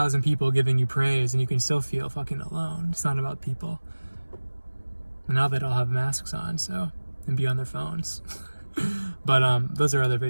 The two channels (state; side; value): inverted; both; correlation -1.00